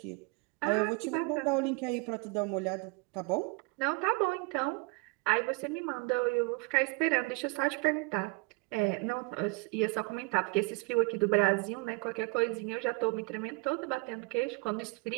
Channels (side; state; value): left; quieter; 29.0 dB